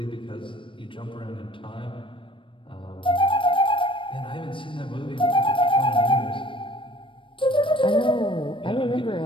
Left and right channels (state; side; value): late; right; 0.25 ms